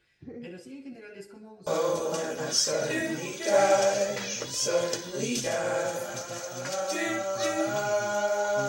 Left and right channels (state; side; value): identical; both; correlation 1.00